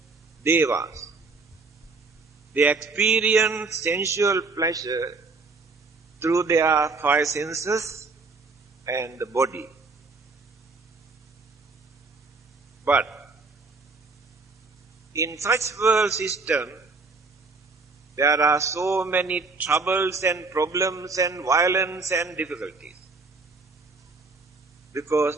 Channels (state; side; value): quieter; left; 4.0 dB